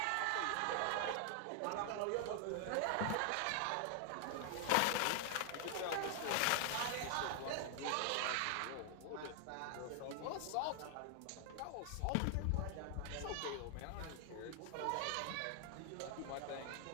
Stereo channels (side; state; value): both; different; correlation 0.00